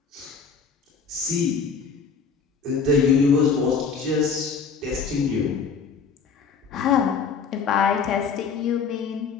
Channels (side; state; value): right; quieter; 5.6 dB